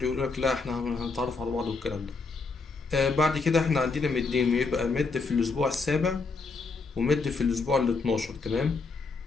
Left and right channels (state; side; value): quieter; right; 4.2 dB